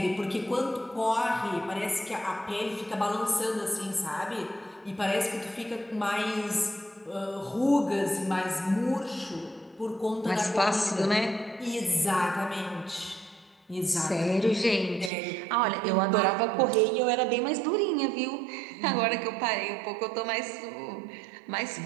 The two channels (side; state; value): left; drops out; at 15.1 s